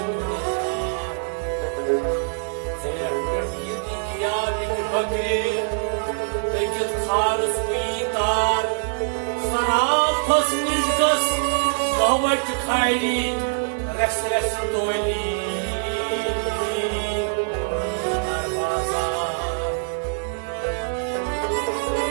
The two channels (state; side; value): silent; left; 58 dB below the other